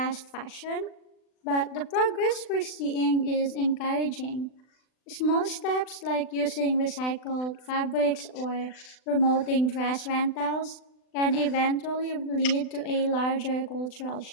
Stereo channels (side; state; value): right; late; 39 ms